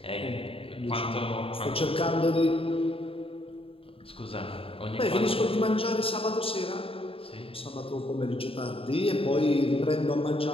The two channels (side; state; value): right; late; 0.27 ms